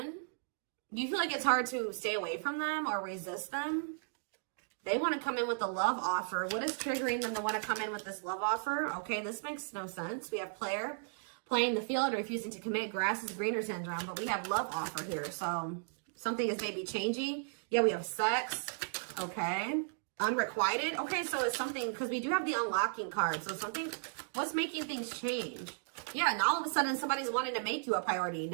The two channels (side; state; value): left; silent; digital silence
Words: Do you feel like it's hard to stay away from them or resist them? They want to come in with a love offer. What is triggering them to want to come in with this love offer? Okay, this makes no sense. We have player, playing the field, refusing to commit, grass is greener syndrome, but we have love offer here. So something is maybe changing. Yeah, we have sex. Okay. Unrequited. Okay, so it's something, because we do have the unlocking card. So something, what's making things change? Yeah, and all of a sudden somebody's wanting to make you a priority.